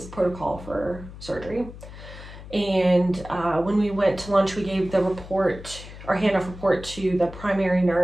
protocol for surgery. And when we went to lunch, we gave the report, our handoff report, to the primary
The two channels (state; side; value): noise; left; hum, 14 dB below the sound